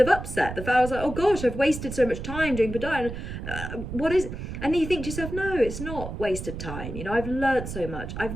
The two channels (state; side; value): noise; right; rumble, 8 dB below the sound